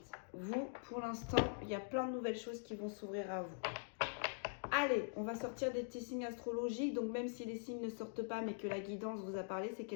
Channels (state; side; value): silent; right; digital silence